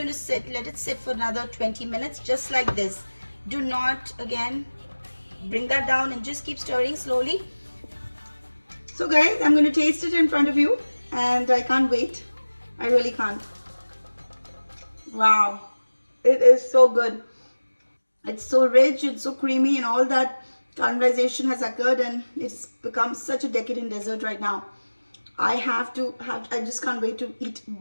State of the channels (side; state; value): both; inverted; correlation -1.00